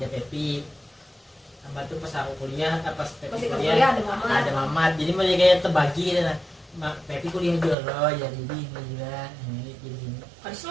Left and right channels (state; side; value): drops out; left; at 7.8 s